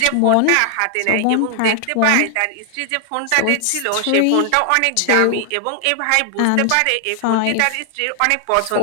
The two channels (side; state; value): both; different; correlation 0.00